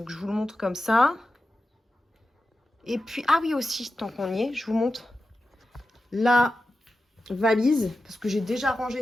je vous le montre comme ça. Et puis, ah oui aussi, tant qu'on y est, je vous montre la valise. Parce que j'ai déjà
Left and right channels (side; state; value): both; normal; correlation 0.92